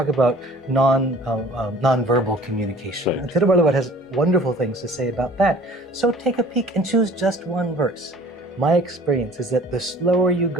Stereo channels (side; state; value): both; normal; correlation 0.49